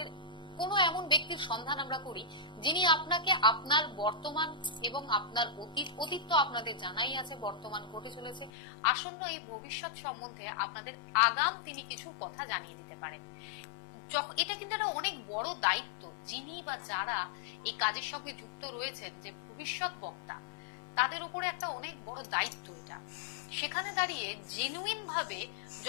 কোনো এমন ব্যক্তির সন্ধান আমরা করি যিনি আপনাকে আপনার বর্তমান এবং আপনার অতীত তো আপনাদের জানাই আছে, বর্তমান ঘটে চলেছে, আসন্ন এই ভবিষ্যৎ সম্বন্ধে আপনাদের আগাম তিনি কিছু কথা জানিয়ে দিতে পারেন। এটা কিন্তু একটা অনেক বড় দায়িত্ব। যিনি বা যারা এই কাজের সঙ্গে যুক্ত রয়েছেন, যে ভবিষ্যৎ বক্তা, তাদের উপরে একটা অনেক বড় দায়িত্ব এটা। সেখানে দাঁড়িয়ে জেনুইন ভাবে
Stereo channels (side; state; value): right; drops out; at 8.5 s